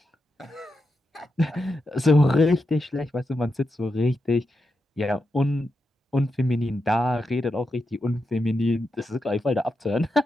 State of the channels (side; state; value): both; normal; correlation 0.87